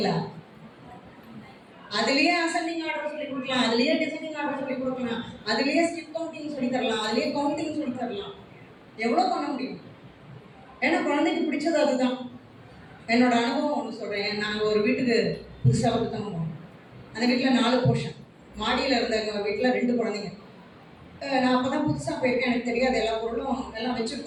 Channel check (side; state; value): both; identical; correlation 1.00